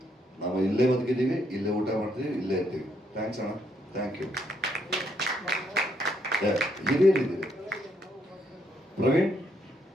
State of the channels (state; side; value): normal; both; correlation 0.74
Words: ನಾವು ಇಲ್ಲೇ ಬದುಕಿದ್ದೀವಿ, ಇಲ್ಲೇ ಊಟ ಮಾಡ್ತೀವಿ, ಇಲ್ಲೇ ಇರ್ತೀವಿ. ಥ್ಯಾಂಕ್ಸ್ ಅಣ್ಣ, ಥ್ಯಾಂಕ್ ಯು. ಹಿರಿಯರಿದ್ದೀವಿ. ಪ್ರವೀಣ್,